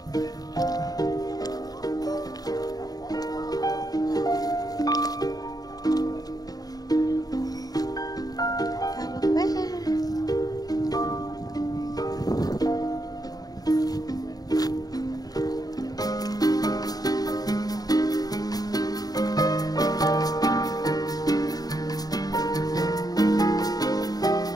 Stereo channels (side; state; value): right; late; 0.18 ms